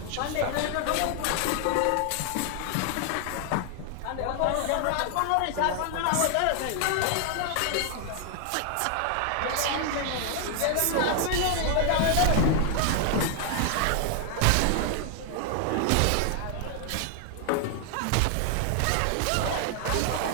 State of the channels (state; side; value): different; both; correlation 0.00